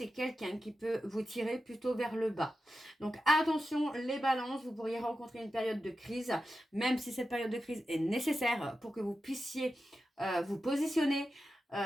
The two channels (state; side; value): normal; both; correlation 0.91